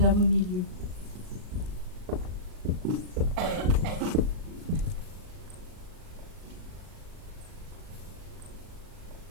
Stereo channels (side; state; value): left; late; 38 ms